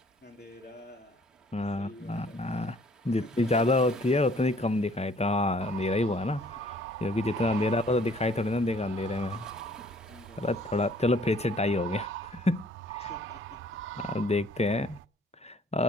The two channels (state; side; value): normal; both; correlation 0.58